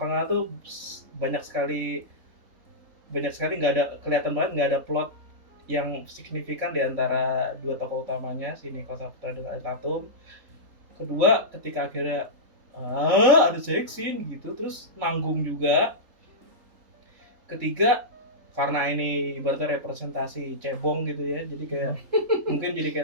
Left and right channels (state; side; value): late; left; 3.8 ms